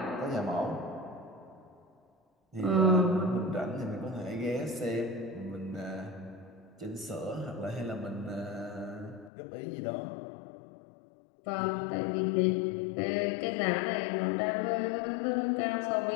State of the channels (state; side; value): drops out; right; at 9.3 s